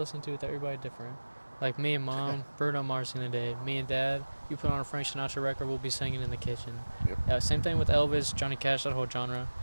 to with everybody different. Like me and Mom, Bruno Mars in the day. Me and Dad, you put on a Frank Sinatra record, we'll be singing in the kitchen. Yep. Same thing with Elvis, Johnny Cash, that whole genre.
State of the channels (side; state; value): both; inverted; correlation -1.00